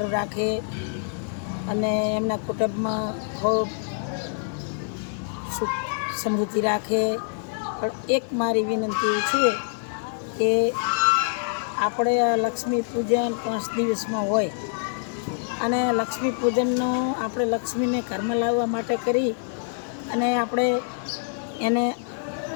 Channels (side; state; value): right; silent; digital silence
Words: રાખે અને એમના કુટુંબમાં ખૂબ સુખ સમૃદ્ધિ રાખે. પણ એક મારી વિનંતી છે કે આપણે લક્ષ્મી પૂજન 5 દિવસમાં હોય અને લક્ષ્મી પૂજનનો આપણે લક્ષ્મીને ઘરમાં લાવવા માટે કરી અને આપણે એને